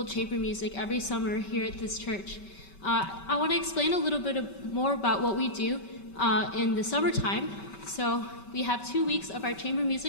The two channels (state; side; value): late; right; 5.2 ms